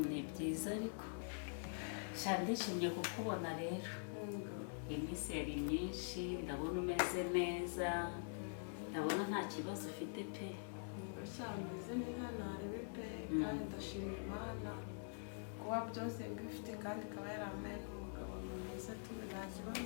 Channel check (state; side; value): silent; right; digital silence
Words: ni byiza ariko ndishimye kukubona rero iminsi yari myinshi ndabona umeze neza ndabona nta kibazo ufite pe meze neza ntarebe pe kandi ndashima Imana kuba byose mbifite kandi ikaba yaramaye n'umugabo mwiza tuzi nta